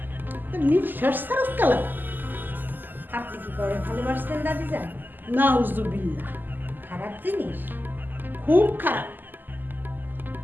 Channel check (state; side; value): late; left; 0.089 ms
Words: তো নিঃশ্বাস ছাড়াস কালা আপনি কি করে ভালোবাসতেন দাদি যান? নাউজুবিল্লাহ, খারাপ জিনিস। খুব খারাপ